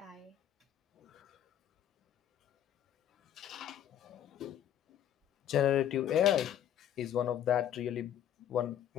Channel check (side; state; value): right; quieter; 10.4 dB